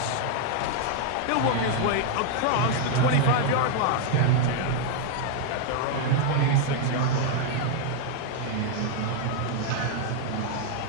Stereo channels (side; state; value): both; different; correlation 0.00